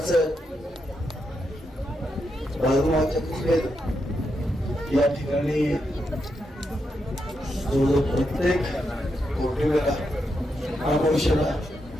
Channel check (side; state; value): both; normal; correlation 0.83